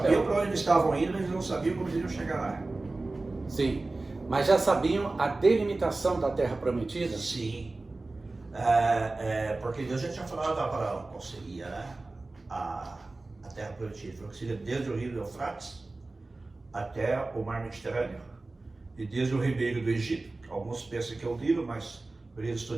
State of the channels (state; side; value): quieter; left; 3.2 dB